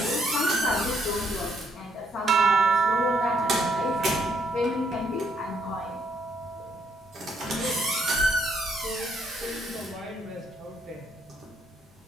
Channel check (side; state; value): both; normal; correlation 0.71